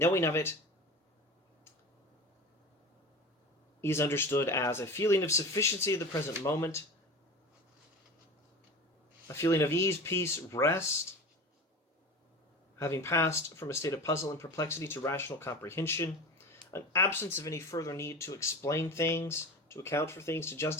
of it is understood as a feeling of sufficiency of the present moment, a feeling of ease, peace, rest, having passed from a state of puzzle and perplexity to rational comprehension, an absence of any further need to explain things, to account for things, to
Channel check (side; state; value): both; normal; correlation 0.32